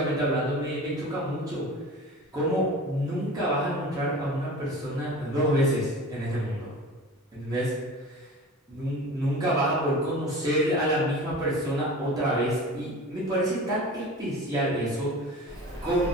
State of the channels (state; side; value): normal; both; correlation 0.37